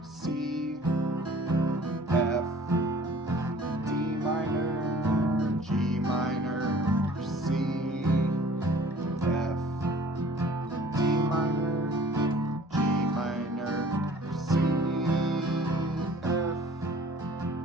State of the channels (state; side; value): normal; both; correlation 0.50